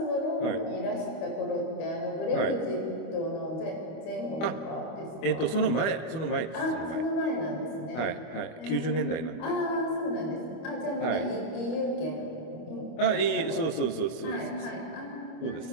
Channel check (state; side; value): late; right; 25 ms